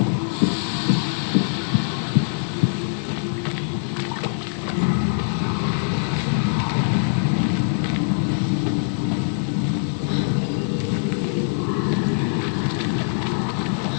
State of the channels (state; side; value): silent; right; 64 dB below the other